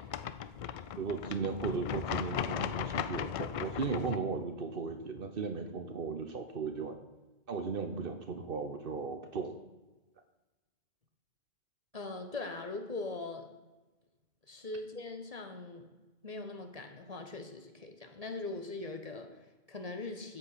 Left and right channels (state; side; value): late; left; 1.5 ms